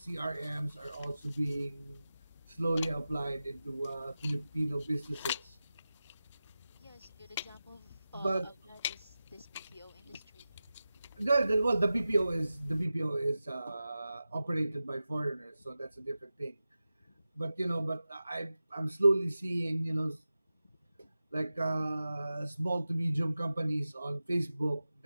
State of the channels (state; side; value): inverted; both; correlation -0.94